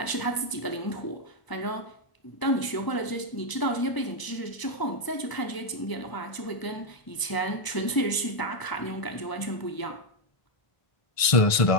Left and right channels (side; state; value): right; late; 1.0 ms